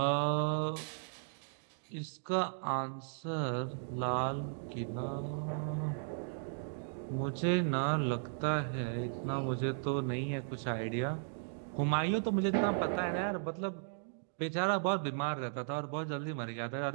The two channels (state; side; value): silent; left; digital silence